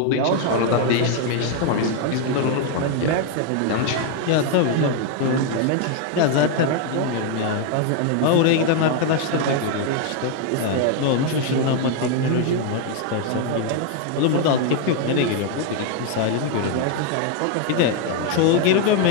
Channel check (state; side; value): different; both; correlation 0.01